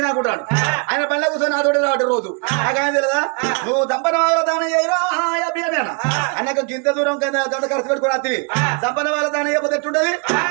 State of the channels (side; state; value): left; quieter; 35.3 dB